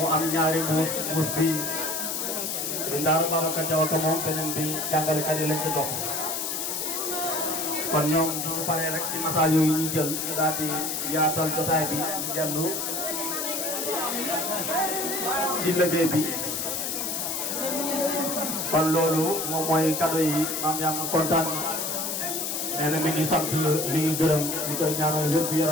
am ñaari mbuus bi di Ndaara Babacar Diaw ko moom beneen bi jàngalekat yi lañ ko jox kon ñoom du ñu paree rek ci nataal yooyu ñu jël ñu daal di yaatal jotaay bi ñu dellu ci liggéey bi kon loolu moom mooy cadeau yi Mame Yama kontaan nee na mi ngi sant mi ngi gërëm ñu koy ñaanal wér gu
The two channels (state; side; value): noise; left; hiss, 2 dB below the sound